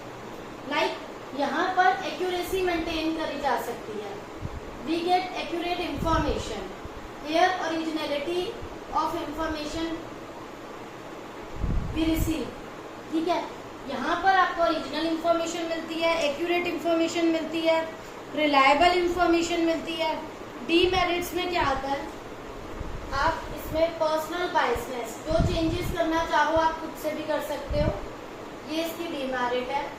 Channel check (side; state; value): both; identical; correlation 1.00